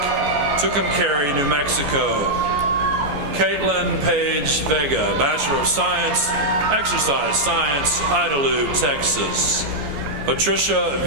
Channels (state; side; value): late; left; 14 ms